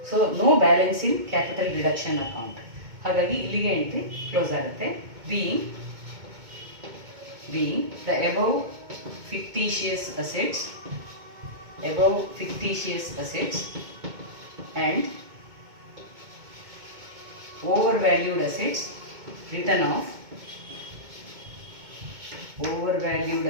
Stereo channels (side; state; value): left; late; 2.2 ms